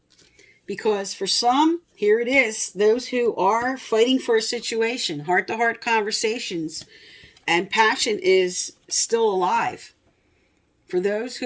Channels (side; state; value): both; identical; correlation 1.00